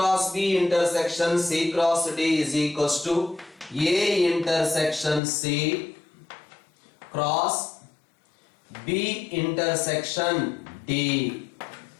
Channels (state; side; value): drops out; right; at 5.2 s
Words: B intersection C cross D is equals to A intersection C cross B intersection D.